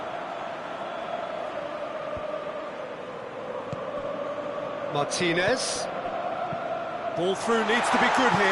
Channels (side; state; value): both; identical; correlation 1.00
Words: Martinez. Ball through needs to be good